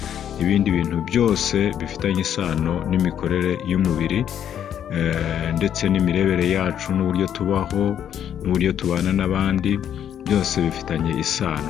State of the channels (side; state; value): right; quieter; 9.6 dB